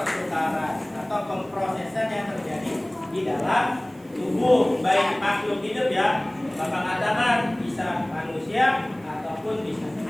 atau pemprosesan yang terjadi di dalam tubuh baik makhluk hidup ya. Bapak katakan bisa manusia ataupun bisa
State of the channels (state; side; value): noise; right; hiss, 29 dB below the sound